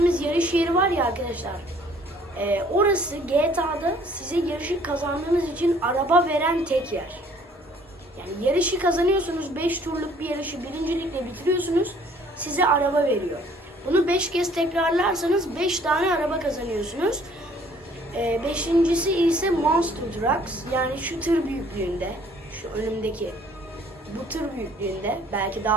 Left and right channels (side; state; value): both; normal; correlation 0.58